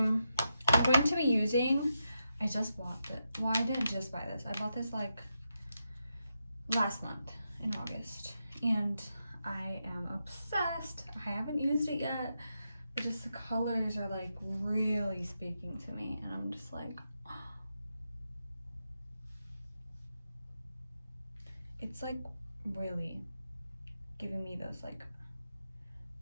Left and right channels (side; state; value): both; inverted; correlation -0.85